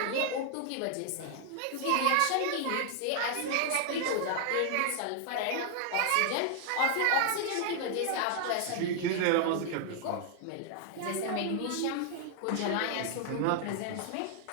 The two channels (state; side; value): different; both; correlation 0.00